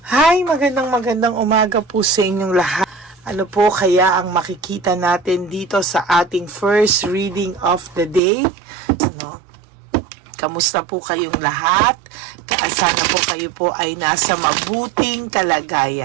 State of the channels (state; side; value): drops out; left; at 8.2 s